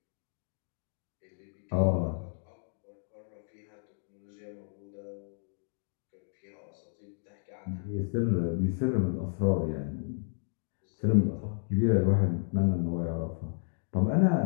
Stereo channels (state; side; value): silent; right; digital silence